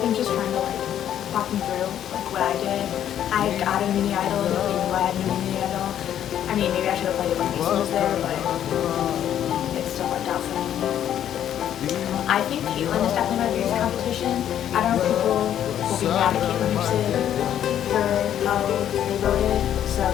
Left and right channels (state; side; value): quieter; right; 10.5 dB